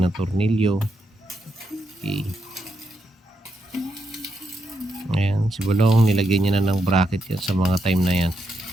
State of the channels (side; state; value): both; normal; correlation 0.82